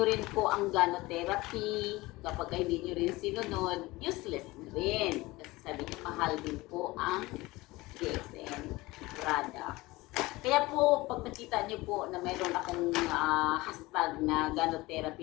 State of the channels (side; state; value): right; quieter; 20.7 dB